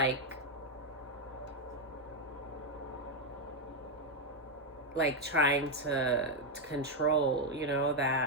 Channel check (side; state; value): both; normal; correlation 0.03